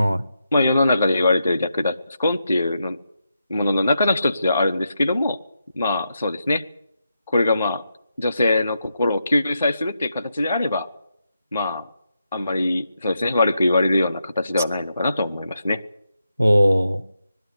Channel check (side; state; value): both; inverted; correlation -0.85